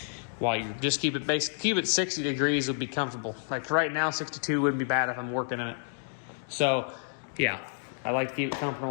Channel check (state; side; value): silent; right; digital silence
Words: While you just keep it 60 degrees would be comfortable. Like right now, 62 wouldn't be bad if I'm working in it. So yeah, I like to keep it